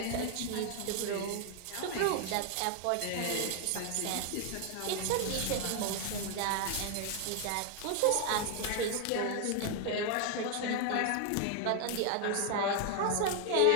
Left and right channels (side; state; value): both; different; correlation 0.00